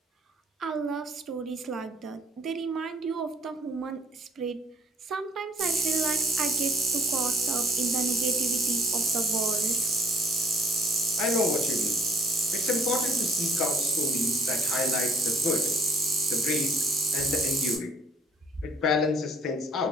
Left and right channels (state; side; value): normal; both; correlation 0.59